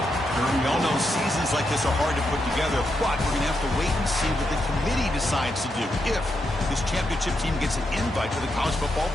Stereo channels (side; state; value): both; normal; correlation 0.83